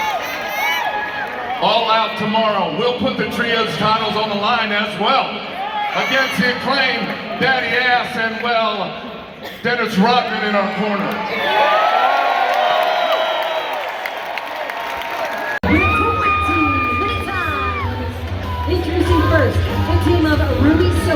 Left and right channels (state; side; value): identical; both; correlation 1.00